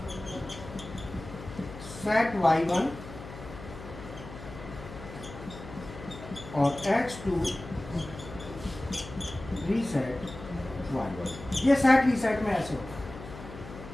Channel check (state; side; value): noise; left; hum, 13 dB below the sound